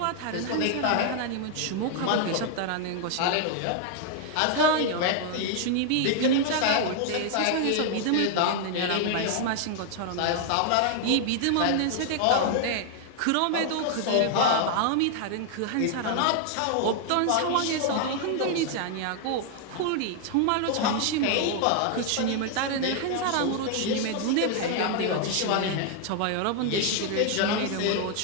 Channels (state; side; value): different; both; correlation 0.00